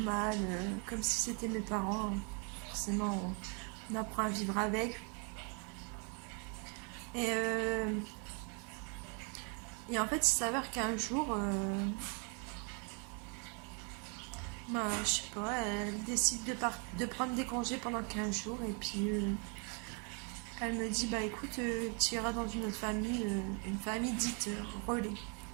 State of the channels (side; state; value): left; quieter; 36.9 dB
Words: comme si c'était mes parents. Forcément, on apprend à vivre avec. Et, euh, et en fait, il s'avère qu'un jour, bah, je sais pas, elle décide de prendre des congés pendant 15 jours et puis elle me dit, bah écoute, tu iras dans une autre famille, une famille dite relais.